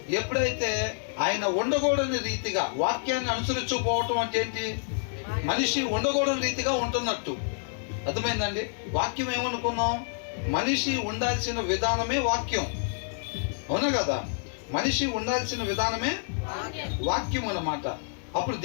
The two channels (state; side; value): silent; right; digital silence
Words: ఎప్పుడైతే ఆయన ఉండకూడని రీతిగా వాక్యాన్ని అనుసరించకపోవటం అంటే ఏంటి? మనిషి ఉండకూడని రీతిగా ఉంటున్నట్టు. అర్థమైందండి? వాక్యం ఏమనుకున్నాం? మనిషి ఉండాల్సిన విధానమే వాక్యం. అవునా కదా? మనిషి ఉండాల్సిన విధానమే వాక్యం అన్నమాట. అప్పుడు